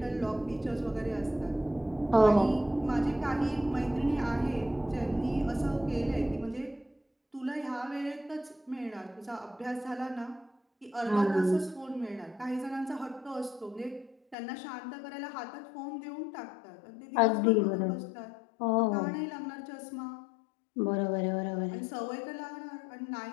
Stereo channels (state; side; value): drops out; right; at 14.4 s